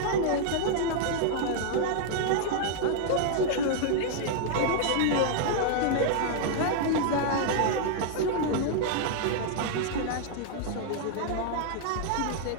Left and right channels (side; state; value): both; different; correlation 0.00